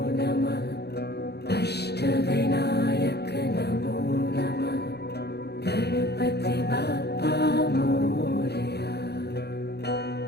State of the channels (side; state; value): right; late; 0.48 ms